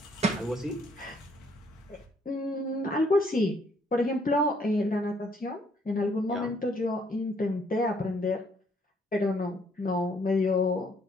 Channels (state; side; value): normal; both; correlation 0.67